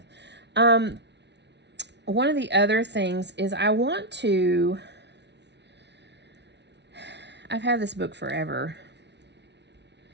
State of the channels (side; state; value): left; late; 0.50 ms